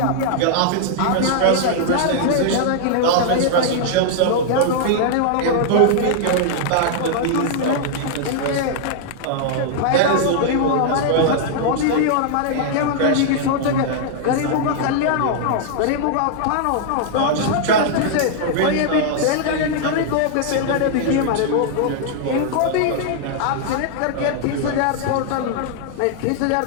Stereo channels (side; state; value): both; different; correlation -0.01